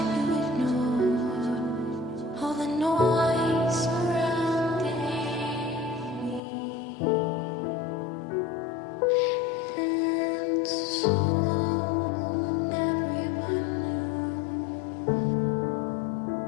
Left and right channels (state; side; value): drops out; right; at 6.4 s